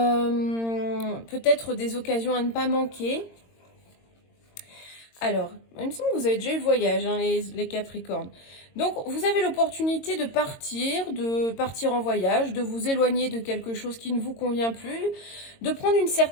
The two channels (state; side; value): late; right; 22 ms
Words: Peut-être des occasions à ne pas manquer. Alors, il me semble que vous avez déjà eu le voyage, hein, les Capricornes. Donc, vous avez l'opportunité de partir en voyage, de vous éloigner de quelque chose qui ne vous convient plus, de prendre une